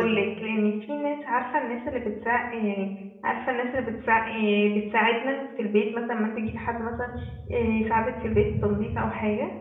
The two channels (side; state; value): both; identical; correlation 1.00